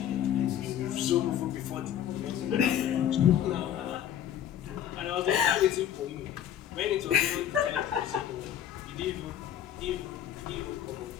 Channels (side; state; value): right; quieter; 10.4 dB